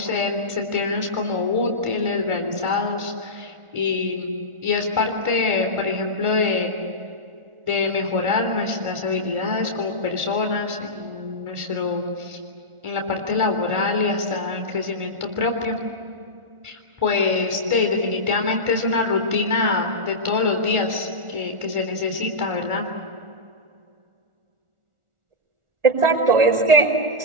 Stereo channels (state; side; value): late; left; 1.4 ms